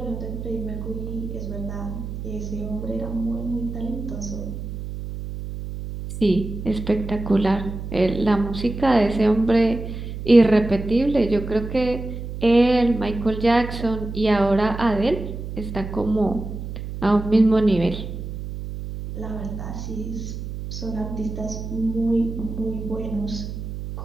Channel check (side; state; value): right; noise; hum, 7 dB below the sound